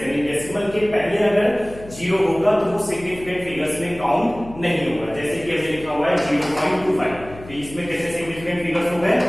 यानी डेसिमल के पहले अगर जीरो होगा तो वो सिग्निफिकेंट फिगर्स में काउंट नहीं होगा। जैसे कि हमने लिखा हुआ है 0.25, तो इसमें कितने सिग्निफिकेंट फिगर्स हो गए,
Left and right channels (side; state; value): left; noise; hum, 17 dB below the sound